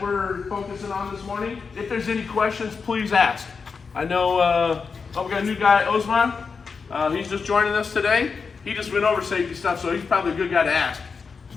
we're focusing on this morning. If there's any questions, please ask. I know we got a new guy, Osman. He's just joining us today. He just went over safety stuff, so he's probably a good guy to ask.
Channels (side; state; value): right; quieter; 5.2 dB